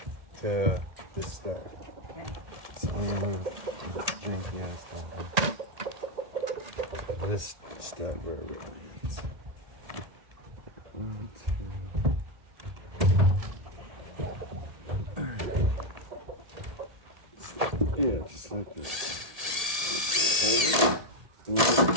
to this stud. Okay. So I'm gonna move the janky ass stuff. This stud wherever it is. 1, 2. Yeah, just like this. Hold it. A little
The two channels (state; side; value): late; left; 1.7 ms